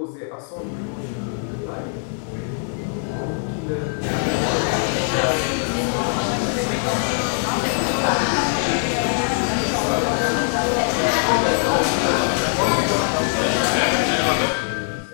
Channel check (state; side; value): silent; right; 64 dB below the other